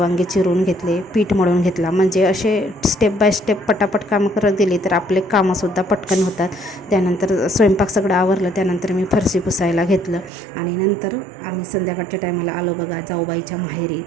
चिरून घेतले, पीठ मळून घेतला. म्हणजे असे स्टेप बाय स्टेप पटापट कामं करत गेली तर आपले कामंसुद्धा पटकन होतात. त्यानंतर स्वयंपाक सगळं आवरलं. त्यानंतर मी फरशी पुसायला घेतलं आणि नंतर आम्ही संध्याकाळच्या टायमाला आलो बघा जाऊबाईच्या माहेरी.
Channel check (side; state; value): left; drops out; at 10.3 s